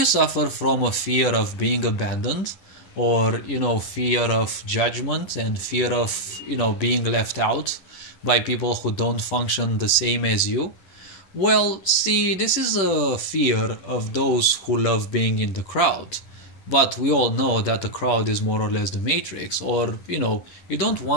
suffer from a fear of being abandoned, or fear of judgment and fear of being left out by people who don't function the same as you? Well, see, this is a fear of those who love being in the crowd. But we all know that the crowd is more or less the matrix, or you don't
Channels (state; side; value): late; right; 10 ms